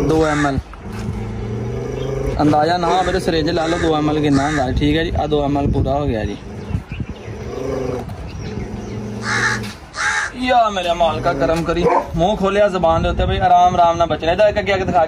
2 ml। ਅੰਦਾਜ਼ਾ ਨਾ ਮੇਰੇ ਸਿਰਿੰਜ ਲਾ ਲਓ 2 ml ਕਿੰਨਾ ਹੁੰਦਾ। ਠੀਕ ਹੈ ਜੀ, ਆ 2 ml ਪੂਰਾ ਹੋ ਗਿਆ ਜੀ। ਯਾ ਮੇਰੇ ਮਾਲਕਾ ਕਰਮ ਕਰੀ। ਮੂੰਹ ਖੋਲਿਆ ਜ਼ਬਾਨ ਦੇ ਉੱਤੇ ਬਈ ਆਰਾਮ ਨਾਲ ਬਚਣਾ। ਇਹਦਾ ਇੱਕ ਅੱਗੇ ਦਿਖਾ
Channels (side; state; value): both; identical; correlation 1.00